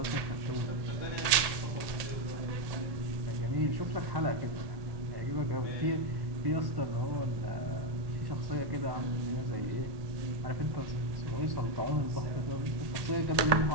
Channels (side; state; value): left; late; 1.8 ms